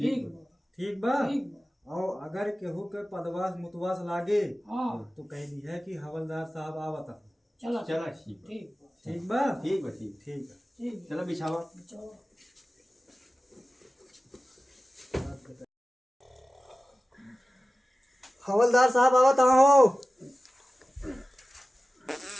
ठीक बा। ठीक बा। और अगर केहू के पदवास मुतवास लागे हाँ तो कह दी है कि हवलदार साहब आवता। चलो चला ठीक बा। ठीक बा। ठीक बा। ठीक बा ठीक। ठीक है। ठीक चलो बिछावा। बिछाओ। हवलदार साहब आवत हो।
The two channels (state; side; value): normal; both; correlation 0.96